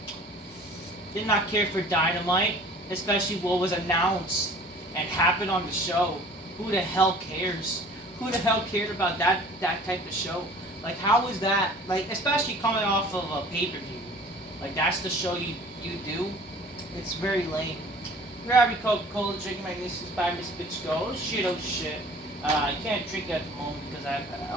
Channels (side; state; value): both; normal; correlation 0.48